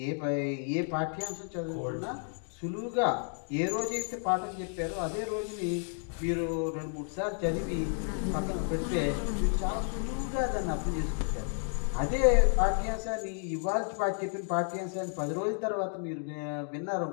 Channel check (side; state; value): right; silent; 57 dB below the other